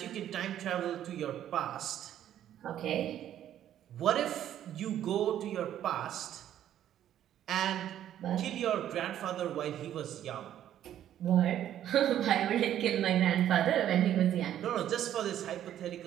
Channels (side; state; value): left; quieter; 11.2 dB